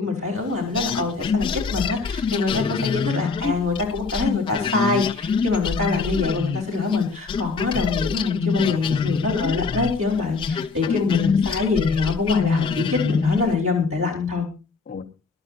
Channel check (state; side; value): quieter; right; 4.3 dB